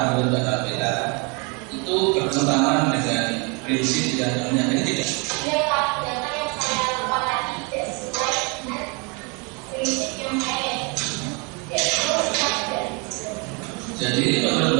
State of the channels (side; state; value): left; quieter; 31.4 dB